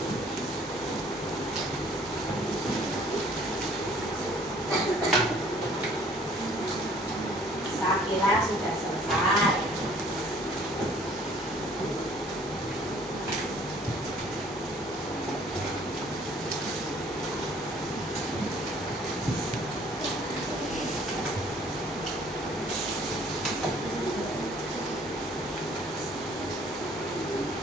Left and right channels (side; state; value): both; normal; correlation 0.57